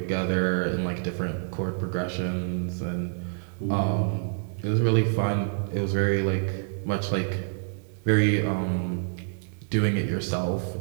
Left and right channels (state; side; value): silent; left; digital silence